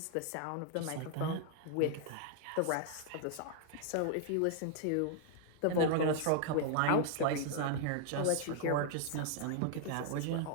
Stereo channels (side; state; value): both; different; correlation 0.00